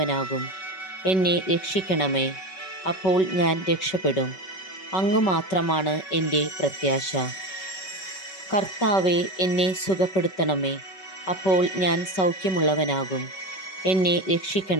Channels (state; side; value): late; right; 5.3 ms